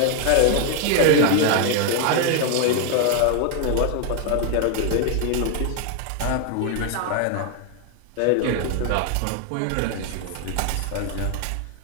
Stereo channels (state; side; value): different; both; correlation 0.01